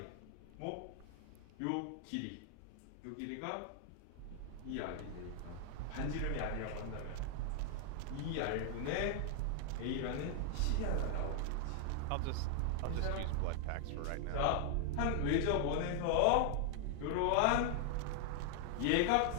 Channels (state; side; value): different; both; correlation 0.00